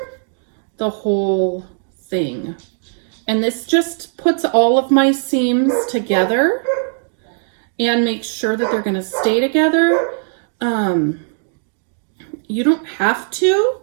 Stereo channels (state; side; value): silent; left; digital silence